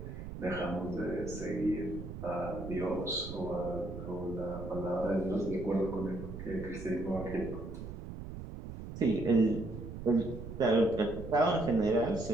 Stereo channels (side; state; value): right; noise; rumble, 9 dB below the sound